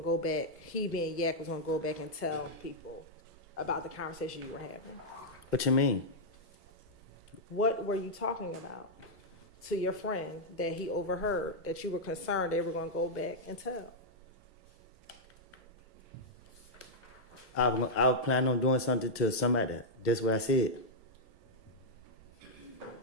to go back, he being Yak was going to go back and tell people about the conversation you were having? What you mean? What were you talking about to your friend that he overheard that you were concerned they were going to go back and tell? I was planning on doing something to somebody. That's what I said.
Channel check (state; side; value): normal; both; correlation -0.05